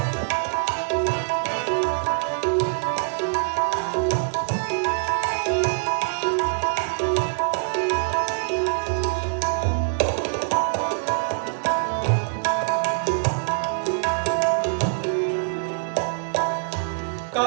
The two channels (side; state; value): left; silent; digital silence